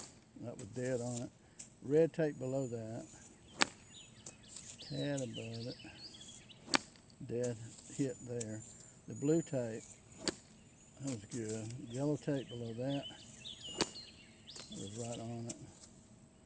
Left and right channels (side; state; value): both; identical; correlation 1.00